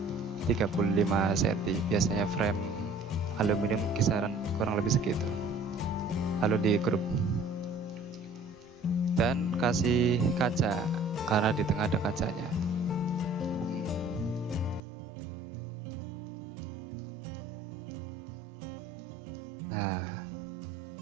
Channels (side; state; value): left; drops out; at 14.8 s